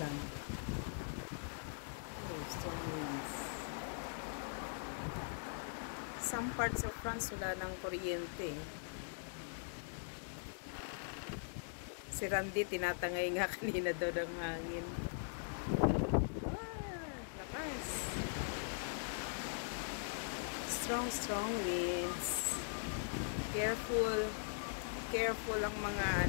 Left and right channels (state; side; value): silent; right; digital silence